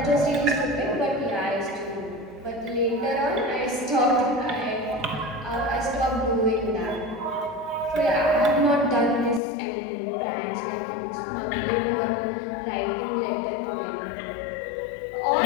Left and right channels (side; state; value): right; drops out; at 9.4 s